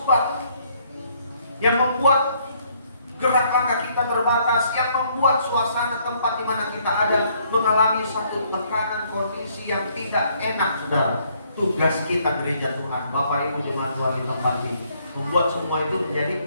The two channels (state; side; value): inverted; both; correlation -0.67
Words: yang membuat gerak langkah kita terbatas, yang membuat suasana tempat di mana kita ada mengalami satu tekanan kondisi yang tidak enak, saudara. Tugas kita gereja Tuhan, Bapak Ibu jemaat Tuhan di tempat ini, membuat semua itu